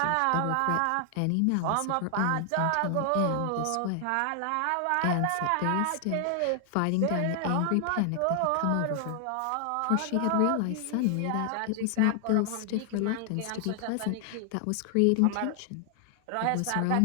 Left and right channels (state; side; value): different; both; correlation 0.00